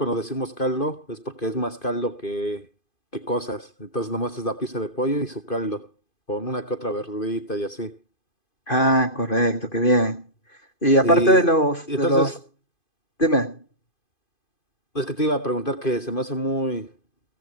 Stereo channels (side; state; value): right; late; 2.5 ms